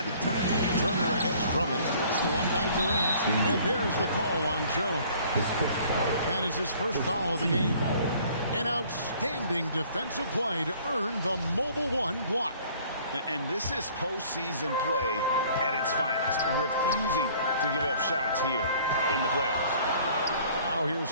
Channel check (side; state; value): both; inverted; correlation -0.55